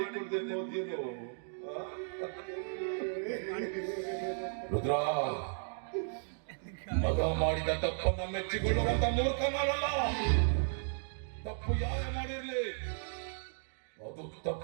ಹೋದ್ಯೇನು? ರುದ್ರ, ಮಗ ಮಾಡಿದ ತಪ್ಪನ್ನ ಮೆಚ್ಚಿಕೊಳ್ಳುವಂತ ಮೂರ್ಖ ನಾನಲ್ಲ. ತಪ್ಪು ಯಾರೇ ಮಾಡಿರ್ಲಿ ಅದು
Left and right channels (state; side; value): silent; left; digital silence